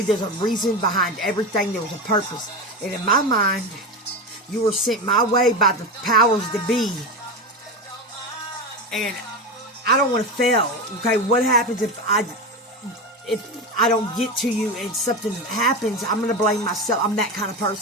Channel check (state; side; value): normal; both; correlation 0.20